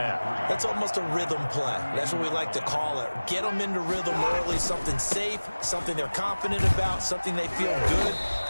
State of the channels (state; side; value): inverted; both; correlation -1.00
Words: That's almost a rhythm play. That's what we like to call it. Get them into rhythm early, something safe, something they're confident about, something they feel good.